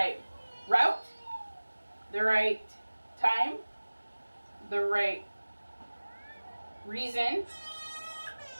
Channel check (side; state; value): both; inverted; correlation -1.00